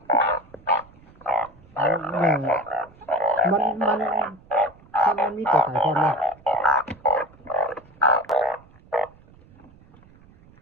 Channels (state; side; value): noise; right; rumble, 26 dB below the sound